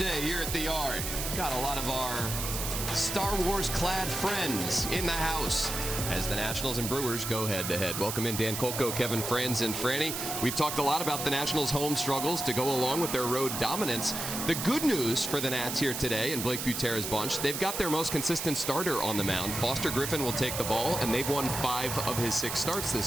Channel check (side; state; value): right; noise; hiss, 4 dB below the sound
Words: here at the Yard. Got a lot of our Star Wars-clad friends in the house as the Nationals and Brewers go head-to-head. Welcome in Dan Kolko, Kevin Franz, and Franny. We've talked a lot about the Nationals' home struggles to go along with their road dominance. The good news for the Nats here today and Blake Butera's bunch, they've got their most consistent starter on the mound. Foster Griffin will take the ball, and they've won 5 of his 6 starts